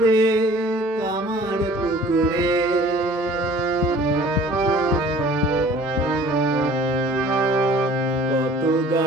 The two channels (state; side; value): normal; both; correlation 0.50